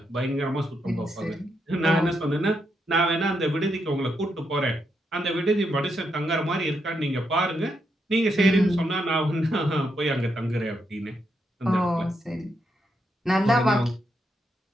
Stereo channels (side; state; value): both; normal; correlation 0.81